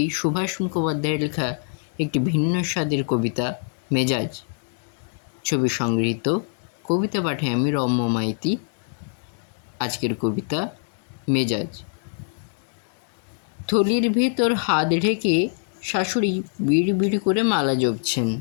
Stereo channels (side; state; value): right; silent; digital silence